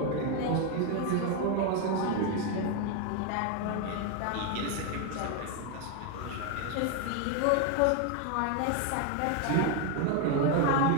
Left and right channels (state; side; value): different; both; correlation 0.01